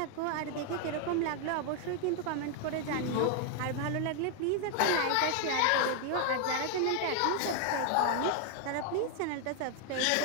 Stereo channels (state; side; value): different; both; correlation 0.00